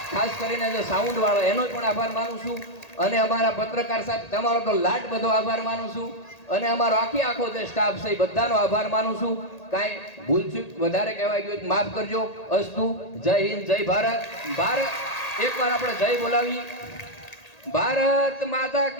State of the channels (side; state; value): right; late; 1.8 ms